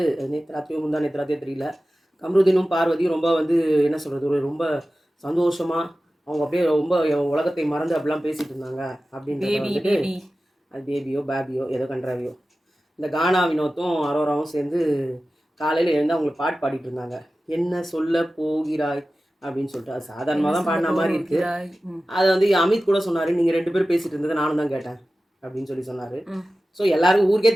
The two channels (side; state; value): both; normal; correlation 0.95